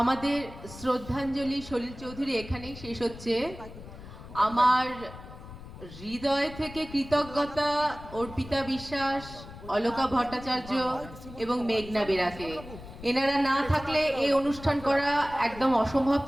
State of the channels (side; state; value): left; noise; rumble, 15 dB below the sound